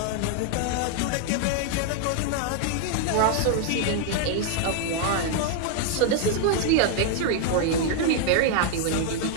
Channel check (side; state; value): both; different; correlation 0.00